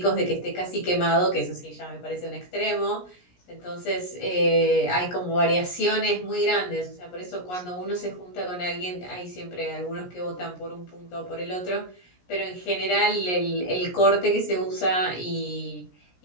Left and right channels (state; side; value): late; right; 17 ms